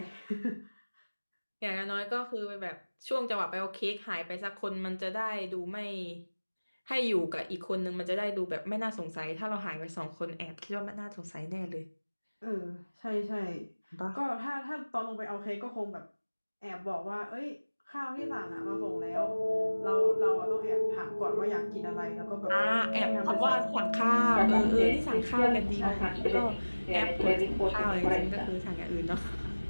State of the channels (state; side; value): inverted; both; correlation -1.00